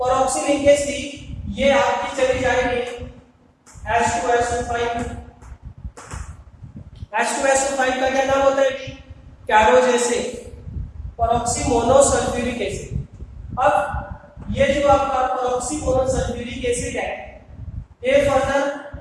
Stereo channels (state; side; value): identical; both; correlation 1.00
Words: लिंकेज थी ये आपकी चली जाएगी H2SO5। H2SO5 का क्या नाम होता है, कैरोज एसिड, पेरोक्सी मोनोसल्फ्यूरिक एसिड। अब ये जो आपका पेरोक्सी मोनोसल्फ्यूरिक एसिड है, ये फर्दर